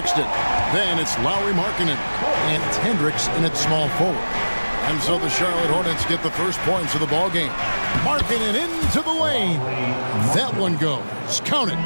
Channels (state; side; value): inverted; both; correlation -1.00